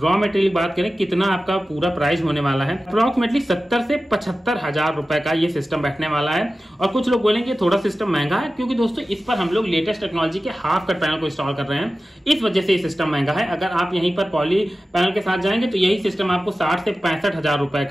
मटेरियल बात करें कितना आपका पूरा प्राइस होने वाला है, अप्रोक्सीमेटली 70 से 75,000 रुपए का ये सिस्टम बैठने वाला है। और कुछ लोग बोलेंगे थोड़ा सिस्टम महंगा है, क्योंकि दोस्तों इस पर हम लोग लेटेस्ट टेक्नोलॉजी के हाफ कट पैनल को इंस्टॉल कर रहे हैं, इस वजह से ये सिस्टम महंगा है। अगर आप यहीं पर पॉली पैनल के साथ जाएंगे तो यही सिस्टम आपको 60 से 65,000 रुपए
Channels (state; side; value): normal; both; correlation 0.95